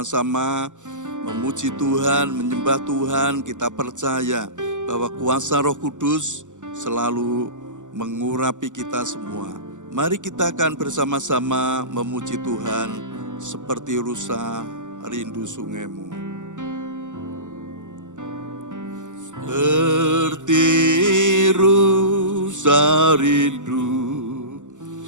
memuji Tuhan, menyembah Tuhan. Kita percaya bahwa kuasa Roh Kudus selalu mengurapi kita semua. Mari kita akan bersama-sama memuji Tuhan seperti rusa rindu sungaimu. Seperti rusa rindu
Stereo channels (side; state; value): left; late; 0.86 ms